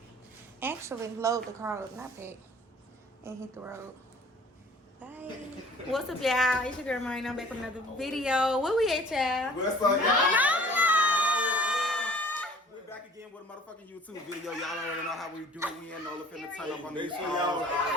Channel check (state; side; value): normal; both; correlation 0.51